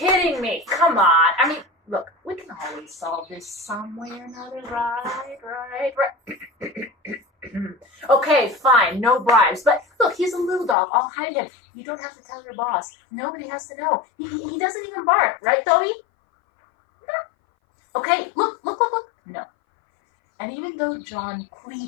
me. Come on. I mean, look, we can always solve this some way or another, right? Okay, fine, no bribes. But look, he's a little dog. I'll hide him. You don't have to tell your boss. Nobody has to know. He doesn't even bark, right, Toby? No. Okay, look. No. And even though John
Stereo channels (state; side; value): drops out; right; at 10.8 s